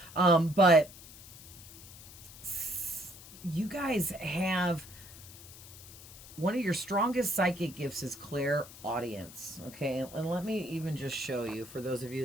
But you guys have one of your strongest psychic gifts is clairaudience. Okay, and let me even just show you for those of you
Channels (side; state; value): left; noise; hiss, 17 dB below the sound